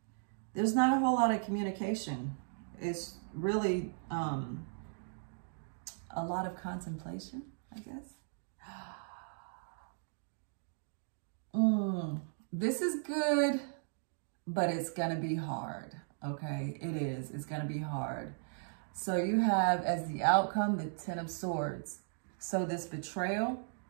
there's not a whole lot of communication. It's really a lot of contemplation, I guess. This is good, but it's gonna be hard, okay? It is, it's gonna be hard. So you have as the outcome, the Ten of Swords. So this betrayal,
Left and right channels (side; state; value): left; silent; digital silence